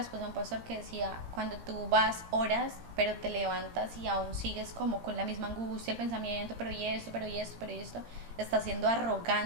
de un pastor que decía, cuando tú vas, oras, pero te levantas y aún sigues como con la misma angustia, el pensamiento, pero y esto, estás siendo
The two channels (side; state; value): left; late; 17 ms